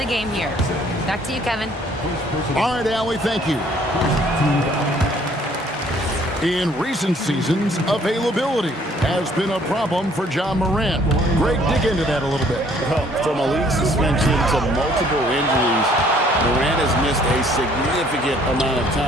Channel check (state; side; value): normal; both; correlation 0.60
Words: game here. Back to you, Kevin. All right, Allie, thank you. In recent seasons, availability has been a problem for Ja Morant. Greg, dig into that a little bit. Well, from a league suspension to multiple injuries, Morant has missed a significant amount of